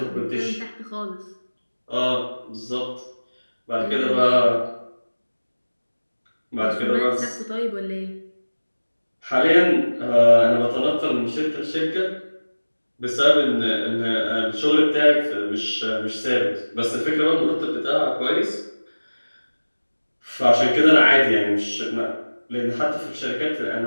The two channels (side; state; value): both; inverted; correlation -1.00